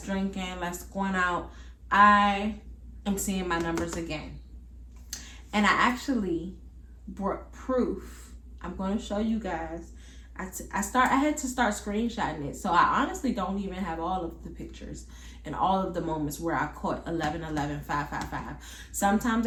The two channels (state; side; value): identical; both; correlation 1.00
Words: drinking, less going out, I am seeing my numbers again. And I actually brought proof. I'm going to show you guys. I had to start screenshotting it. So I honestly don't even have all of the pictures and all of the moments where I caught 11 11 5 5 5. Sometimes